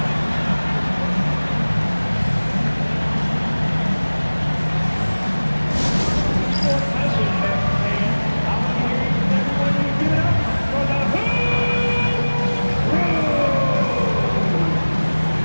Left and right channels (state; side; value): inverted; both; correlation -1.00